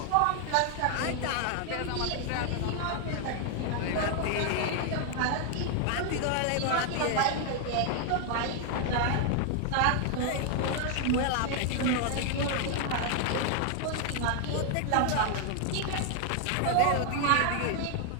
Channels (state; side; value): different; both; correlation 0.00